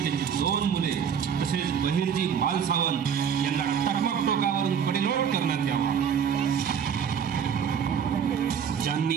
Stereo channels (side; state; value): left; quieter; 7.7 dB